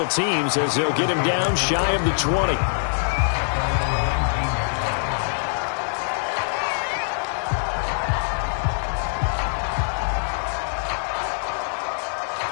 teams as they'll get him down shy of the 20.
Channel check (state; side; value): silent; right; digital silence